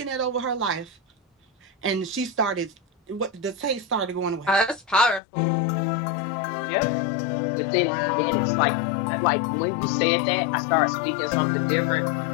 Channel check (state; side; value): drops out; right; at 5.2 s